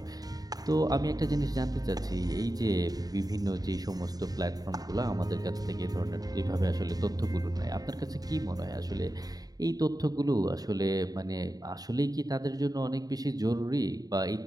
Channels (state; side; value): late; left; 0.18 ms